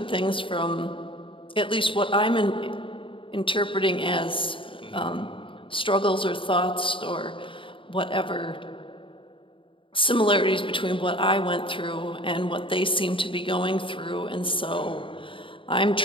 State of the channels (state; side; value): late; right; 0.25 ms